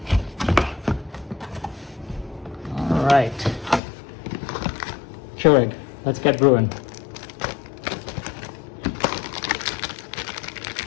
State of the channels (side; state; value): right; drops out; at 3.8 s